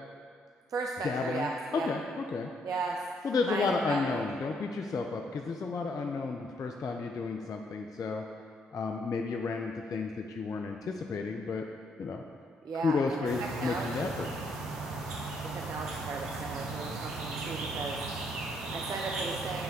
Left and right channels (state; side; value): normal; both; correlation 0.72